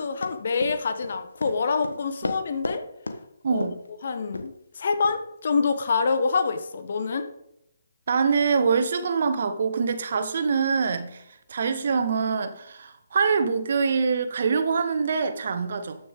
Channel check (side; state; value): both; inverted; correlation -0.78